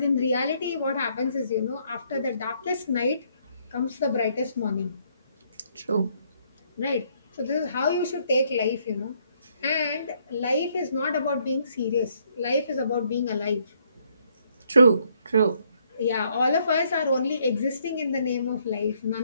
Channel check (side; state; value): both; inverted; correlation -0.70